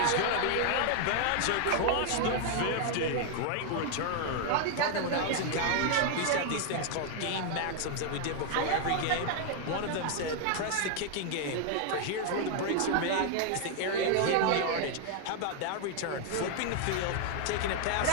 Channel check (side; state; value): both; different; correlation 0.00